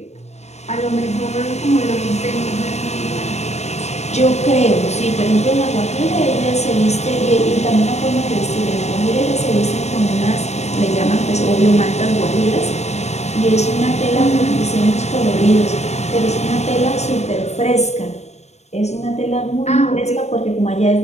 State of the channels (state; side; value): late; right; 0.32 ms